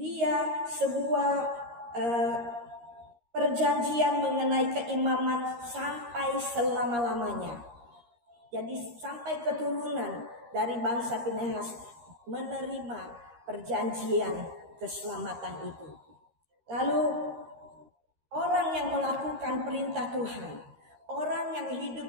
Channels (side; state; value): left; late; 13 ms